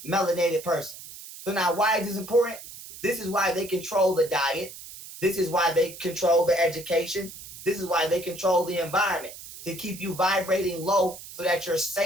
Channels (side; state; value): right; noise; hiss, 14 dB below the sound